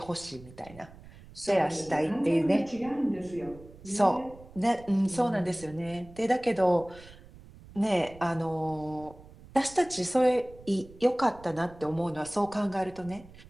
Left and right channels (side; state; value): right; noise; rumble, 20 dB below the sound